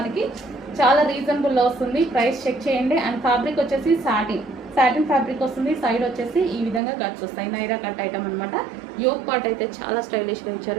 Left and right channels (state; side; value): drops out; left; at 6.8 s